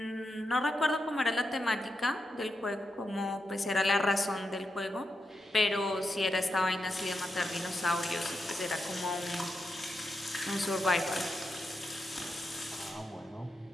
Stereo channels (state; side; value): normal; both; correlation 0.86